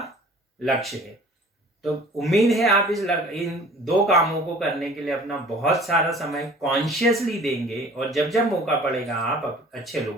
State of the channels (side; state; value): both; normal; correlation 0.48